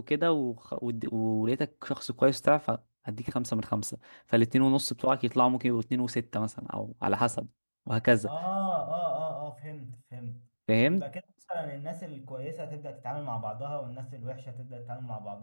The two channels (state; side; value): inverted; both; correlation -1.00